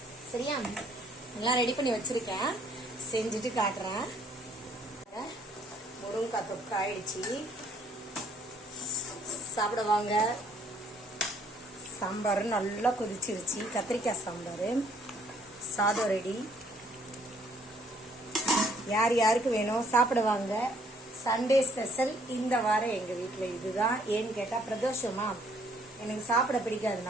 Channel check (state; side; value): normal; both; correlation 0.64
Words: சரியா? எல்லாம் ரெடி பண்ணி வச்சிருக்கேன், செஞ்சுட்டு காட்டுறேன். முருங்கைக்காய் தொக்கு ஆயிடுச்சு, சாப்பிடுவாங்க. சாம்பார் நல்லா கொதிச்சிருச்சு, கத்திரிக்காய் சாம்பார். சாதம் ரெடி. யார் யாருக்கு வேணும் சாப்பிடுவாங்க. சண்டே ஸ்பெஷல் இந்த வாரம் எங்க வீட்டில் இதுதான். ஏன்னு கேட்டா பிரதோஷமா, எனக்கு சாப்பிட பிடிக்காது